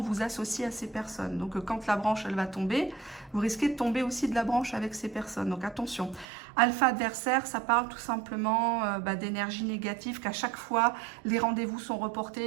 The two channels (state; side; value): drops out; left; at 6.2 s